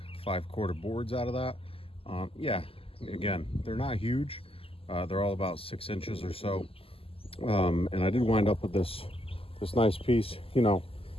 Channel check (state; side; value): late; right; 0.27 ms